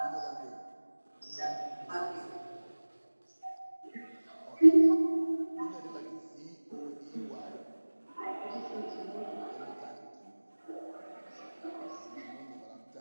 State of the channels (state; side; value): inverted; both; correlation -1.00